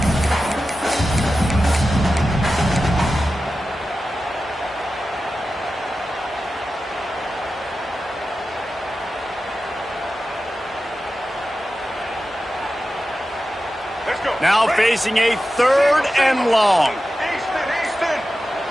Now facing a 3rd and long.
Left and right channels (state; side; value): normal; both; correlation 0.93